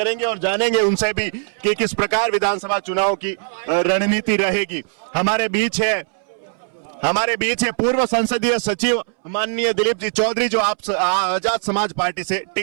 और जानेंगे उनसे भी कि किस प्रकार विधानसभा चुनाव की रणनीति रहेगी। हमारे बीच है पूर्व संसदीय सचिव माननीय दिलीप जी चौधरी जो आप आजाद समाज पार्टी से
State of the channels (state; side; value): silent; left; 66 dB below the other